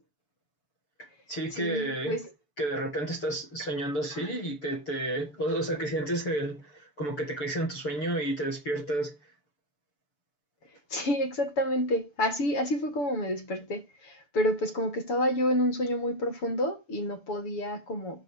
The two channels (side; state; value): right; late; 6.9 ms